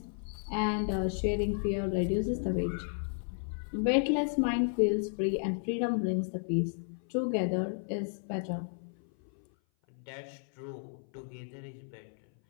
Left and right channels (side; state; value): right; silent; 56 dB below the other